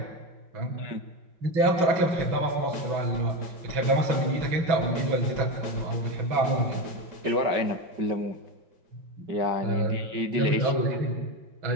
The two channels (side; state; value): left; late; 5.3 ms